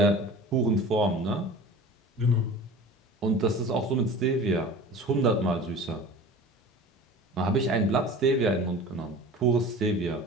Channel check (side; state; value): both; normal; correlation 0.39